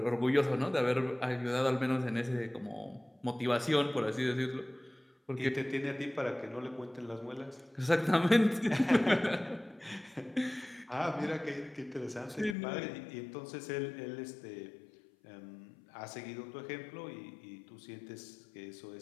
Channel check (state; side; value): drops out; right; at 12.6 s